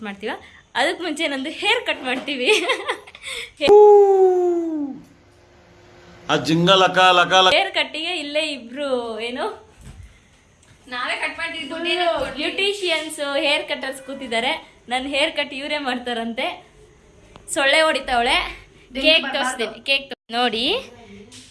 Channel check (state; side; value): identical; both; correlation 1.00